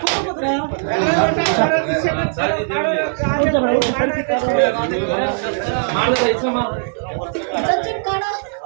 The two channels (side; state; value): left; silent; 65 dB below the other